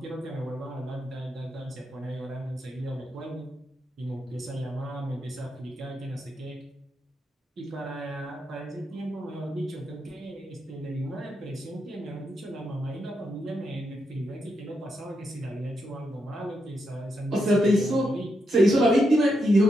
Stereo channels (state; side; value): normal; both; correlation 0.83